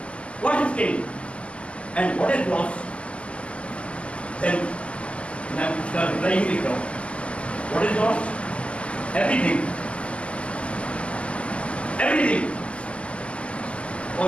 What is gain? And what is loss? Then मैं उसका reply ही लिख रहा हूँ. What is loss? Everything. Everything.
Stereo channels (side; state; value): right; late; 0.061 ms